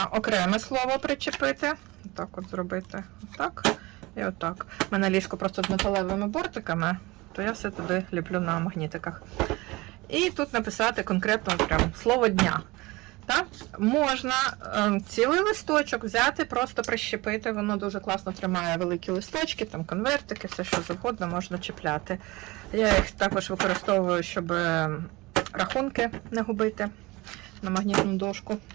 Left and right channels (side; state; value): left; quieter; 22.2 dB